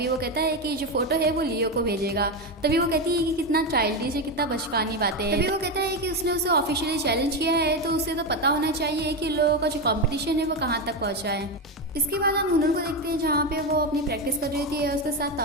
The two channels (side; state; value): both; normal; correlation 0.13